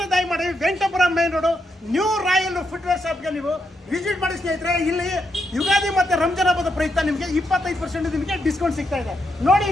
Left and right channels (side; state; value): both; normal; correlation 0.81